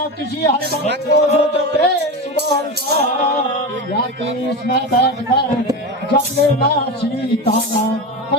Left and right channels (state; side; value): normal; both; correlation 0.22